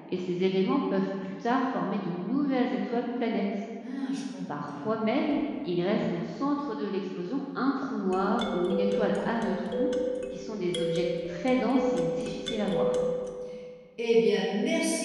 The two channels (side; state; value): both; identical; correlation 1.00